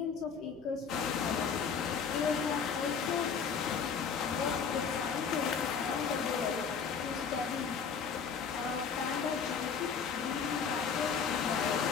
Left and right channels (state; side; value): quieter; right; 6.3 dB